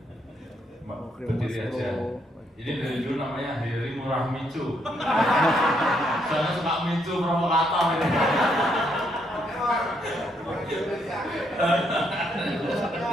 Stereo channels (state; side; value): normal; both; correlation 0.74